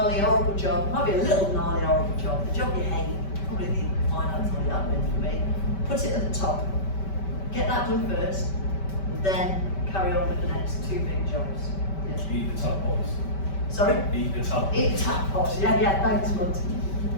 horrible job, might be a little gnarly, horrible job, the job you hate, probably the finance or the admin for me, put it at the top. Get that done first, and then carry on with the next 2 big jobs. Yeah. Eat the tadpoles. Sorry? Eat the tadpoles. Eat the tadpoles, yeah, thanks, Monty.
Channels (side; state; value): right; late; 5.2 ms